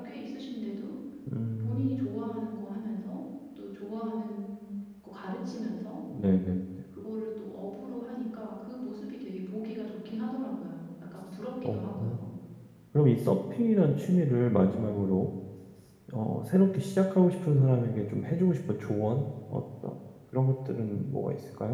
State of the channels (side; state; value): both; identical; correlation 1.00